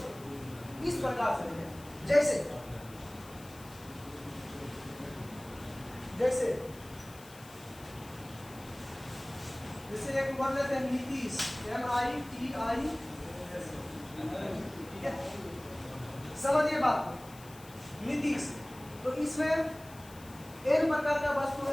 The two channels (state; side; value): noise; left; hiss, 20 dB below the sound